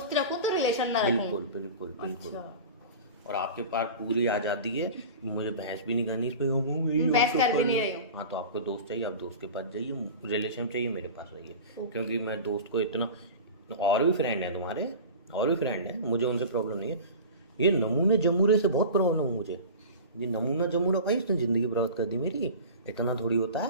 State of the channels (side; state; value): both; inverted; correlation -0.34